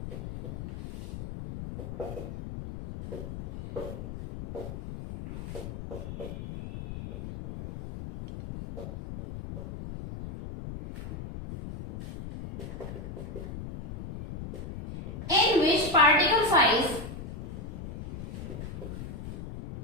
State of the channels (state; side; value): noise; left; rumble, 9 dB below the sound